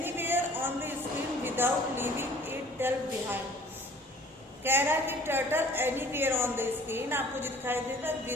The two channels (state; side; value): normal; both; correlation 0.51